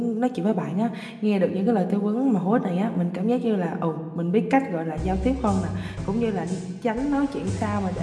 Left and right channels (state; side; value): identical; both; correlation 1.00